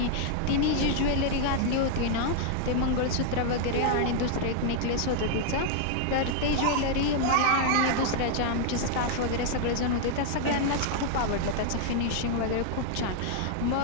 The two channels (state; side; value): different; both; correlation 0.00